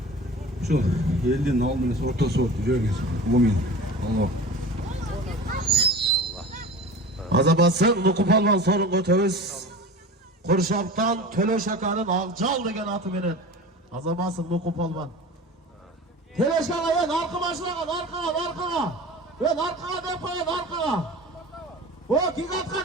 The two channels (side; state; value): both; normal; correlation 0.36